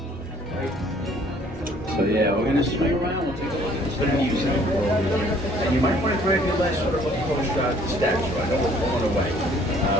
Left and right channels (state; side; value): normal; both; correlation 0.59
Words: So yeah, we're gonna swing around. We'll take a look at this bit of music. And you might want to grab your last sort of look postcard to the statue. I know we're going away.